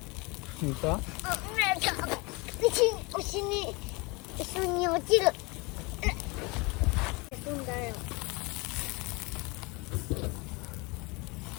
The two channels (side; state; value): right; quieter; 26.9 dB